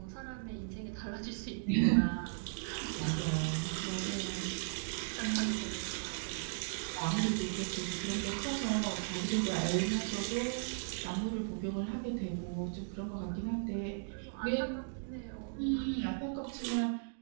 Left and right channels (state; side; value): silent; left; digital silence